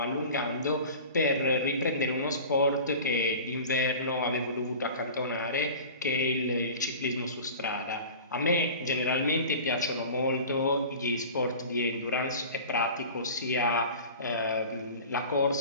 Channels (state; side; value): inverted; both; correlation -0.38